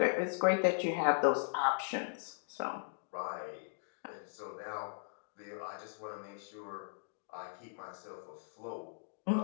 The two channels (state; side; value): silent; right; digital silence